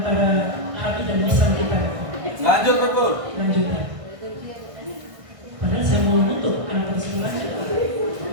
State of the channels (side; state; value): left; late; 1.6 ms